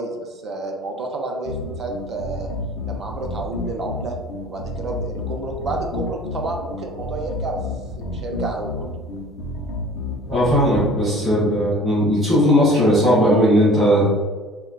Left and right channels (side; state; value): both; normal; correlation 0.48